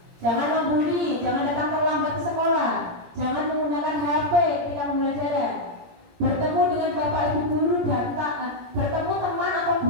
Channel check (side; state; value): left; late; 17 ms